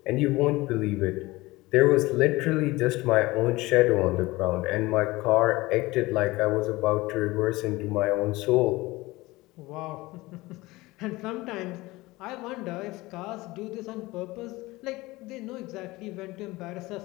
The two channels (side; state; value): right; quieter; 20.5 dB